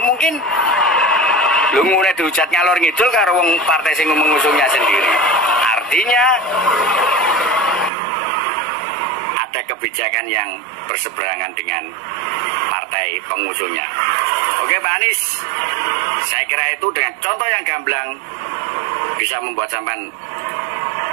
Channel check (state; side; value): drops out; left; at 7.9 s